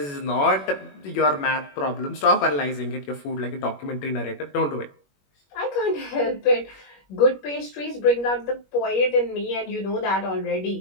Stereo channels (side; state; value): right; late; 21 ms